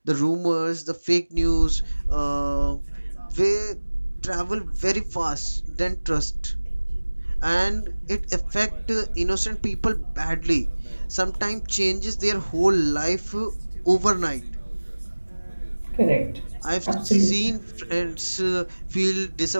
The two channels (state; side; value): inverted; both; correlation -1.00